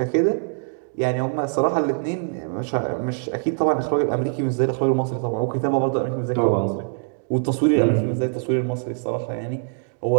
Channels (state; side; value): silent; left; 63 dB below the other